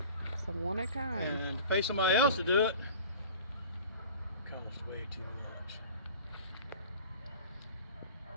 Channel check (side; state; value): both; inverted; correlation -0.41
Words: It's a one of a kind. And to pay somebody else to do it costs way too much.